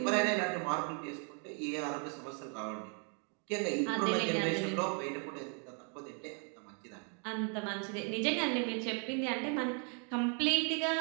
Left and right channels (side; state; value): left; quieter; 39.7 dB